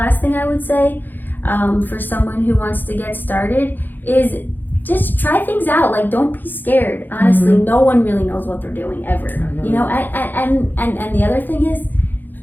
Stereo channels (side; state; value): right; late; 0.089 ms